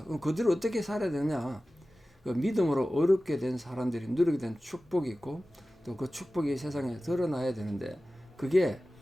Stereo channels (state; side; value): normal; both; correlation 0.96